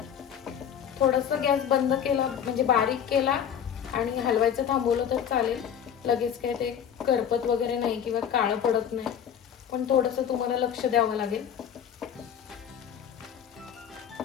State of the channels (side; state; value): right; quieter; 8.7 dB